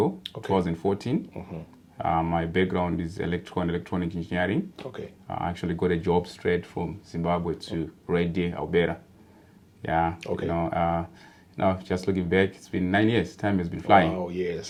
2014. My background is electrical and electronic engineering. Okay. I actually got a job straight from Zimbabwe to Harare, Alberta. Yeah. Okay. Now, just looking back, it's been 9 years. Time has been flying. Oh,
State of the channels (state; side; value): identical; both; correlation 1.00